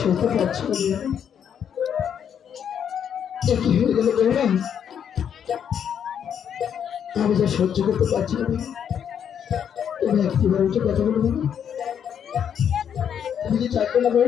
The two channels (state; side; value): quieter; right; 8.4 dB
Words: সরতে পারছি না বেরো না, কি হয়ে গেল বেরো না। আমি যা সহ্য করতে পারছি না, তুমি একটিবার উঠে কথা বলবে না। তুমি কি চাইবে না